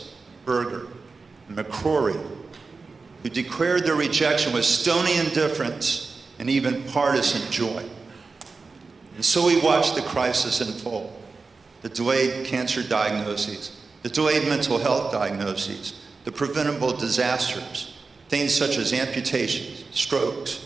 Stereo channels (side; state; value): left; quieter; 4.2 dB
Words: Berger, and McCrory, who declared their rejection with stony indifference and even partisan joy. And so we watched the crisis unfold, the delayed cancer diagnoses, the delayed mental health diagnoses, the preventable disasters, things such as amputations, strokes,